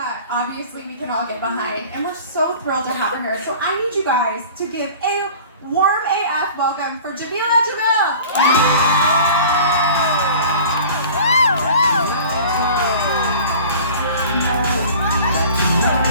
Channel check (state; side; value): inverted; both; correlation -0.43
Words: obviously we can all get behind, and we're so thrilled to have her here. So I need you guys to give a warm AF welcome for Jameela Jamil.